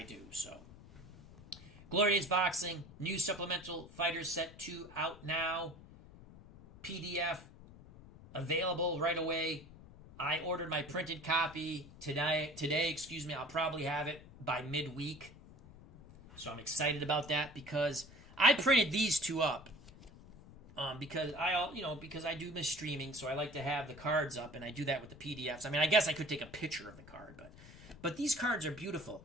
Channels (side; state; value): left; noise; rumble, 19 dB below the sound